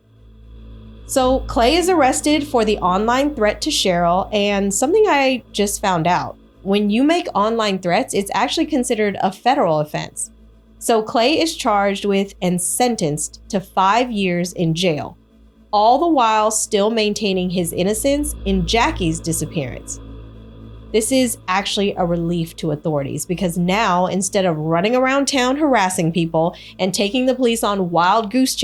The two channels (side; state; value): both; identical; correlation 1.00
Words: So Clay is arrested for the online threat to Cheryl, and something I just found out. When you make online threats, it's actually considered a federal offense. So Clay is charged with and sentenced to 5 years in jail, all the while still maintaining his innocence in Jacque's disappearance. This is actually a relief to authorities because now, instead of running around town harassing people and taking the police on wild goose